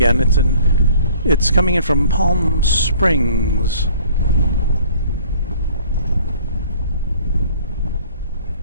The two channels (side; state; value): both; inverted; correlation -0.53